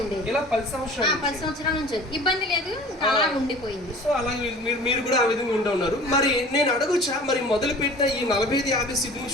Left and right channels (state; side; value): normal; both; correlation 0.44